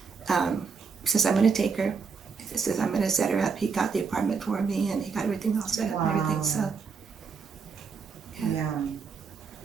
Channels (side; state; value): left; quieter; 5.4 dB